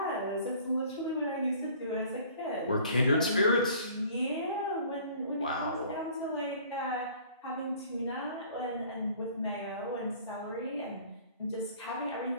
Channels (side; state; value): both; inverted; correlation -0.51